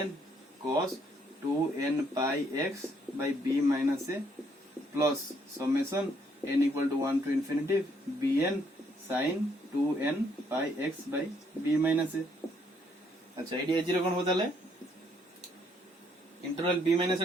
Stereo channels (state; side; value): normal; both; correlation 0.70